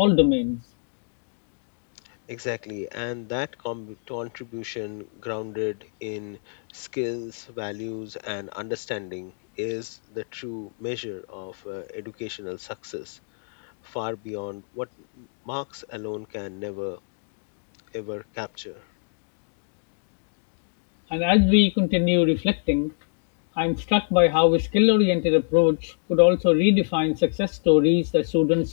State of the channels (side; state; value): right; silent; digital silence